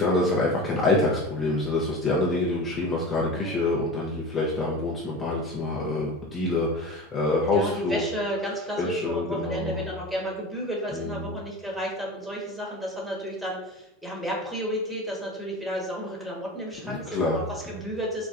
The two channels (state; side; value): normal; both; correlation 0.32